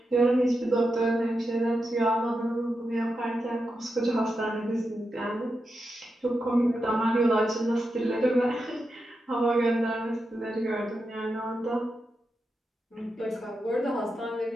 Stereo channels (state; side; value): normal; both; correlation 0.88